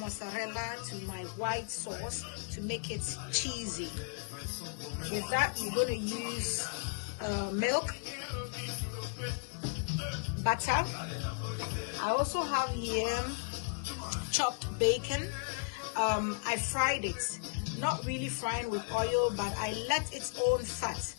to my white sauce to make it cheesy. With that, we're going to use milk, butter. I also have here chopped bacon. I fried it, not really frying with oil, but I let its own fat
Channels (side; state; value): right; quieter; 38.3 dB